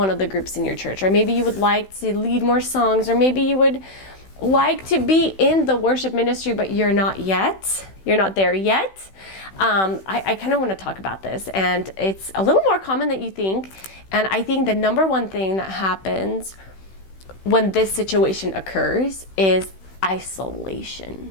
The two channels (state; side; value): late; right; 16 ms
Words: of the groups in your church, or maybe you would like to lead more songs, or maybe you would like to be in the worship ministry, but you're not there yet. I kind of want to talk about this, and it's a little more common than you think. And I think the number one thing that happens when this situation occurs is isolation.